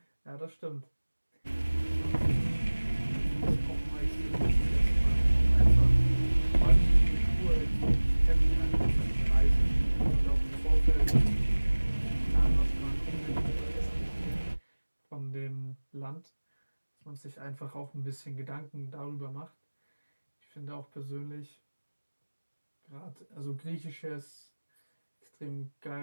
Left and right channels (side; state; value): both; inverted; correlation -1.00